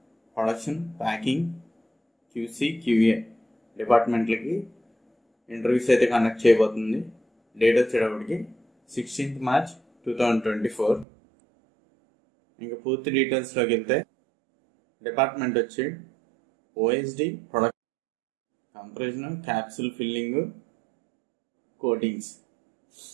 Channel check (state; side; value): drops out; left; at 11.1 s